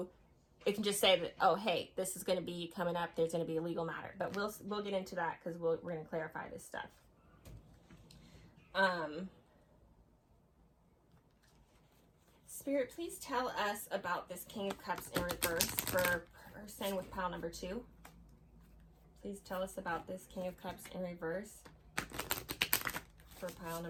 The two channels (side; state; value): both; identical; correlation 1.00